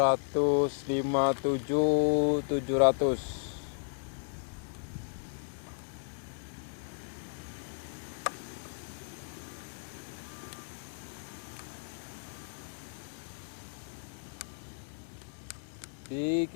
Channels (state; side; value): silent; right; digital silence